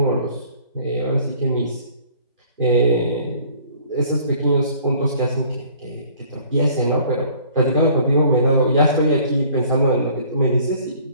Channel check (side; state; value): both; inverted; correlation -0.54